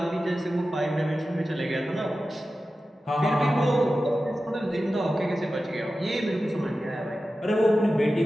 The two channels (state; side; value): normal; both; correlation 0.94